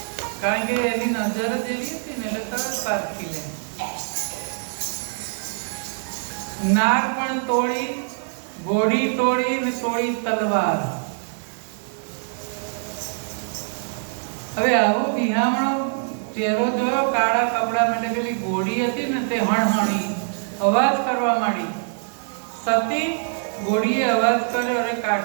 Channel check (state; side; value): silent; left; digital silence